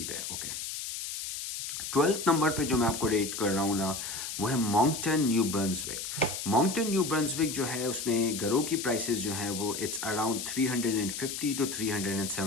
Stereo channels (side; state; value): left; noise; hiss, 6 dB below the sound